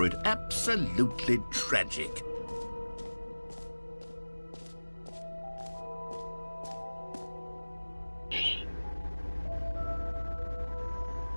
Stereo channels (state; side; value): inverted; both; correlation -1.00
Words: it. Absolutely tragic.